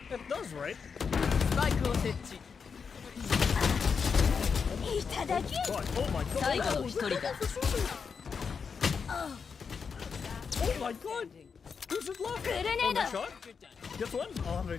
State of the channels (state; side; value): quieter; right; 5.9 dB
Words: It does, right? スパイクを設置。いただき。 God, oh my god. 最後の1人だ。 Oh my god. Who's it left? Grenade. Oh, that shot? Guess what? Oh, I'm gonna